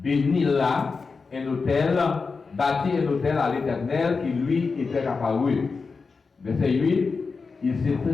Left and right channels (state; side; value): quieter; right; 4.6 dB